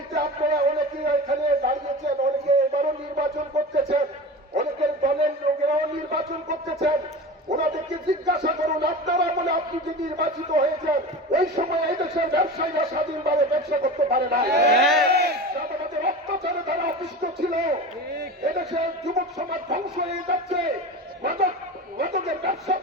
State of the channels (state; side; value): normal; both; correlation 0.30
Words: আপনারা অনেকে এখানে দাঁড়িয়েছেন, অনেকে এবারও নির্বাচন করতেছেন, অনেকের দলের লোকেরাও নির্বাচন করতেছেন। ওনাদেরকে জিজ্ঞাসা করুন, আপনারা বলে আপনি যে নির্বাচিত হয়েছেন, ওই সময় এই দেশের ব্যবসায়ীরা স্বাধীনভাবে ব্যবসা করতে পারে না। তাদের অত্যাচারে তারা অতিষ্ঠ ছিল। এদেশের যুবক সমাজ ধ্বংস হয়ে যাচ্ছে। মাদকের ব্যবসা